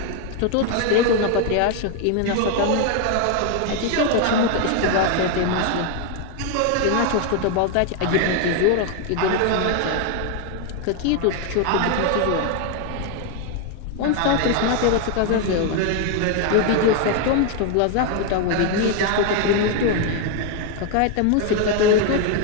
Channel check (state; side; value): different; both; correlation 0.01